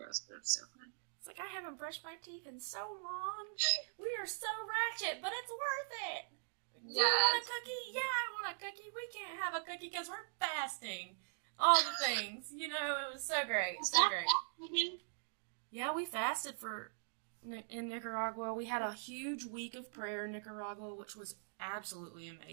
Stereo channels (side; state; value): left; silent; digital silence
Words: but it was so fun. It's like, I haven't brushed my teeth in so long. We are so ratchet, but it's worth it. Yes. You want a cookie? Yeah, I want a cookie. We can't have a cookie because we're fasting. All the things. You know, it was so great. So great. Yeah, we fasted in Nicaragua. We had a huge week of prayer in Nicaragua, which was absolutely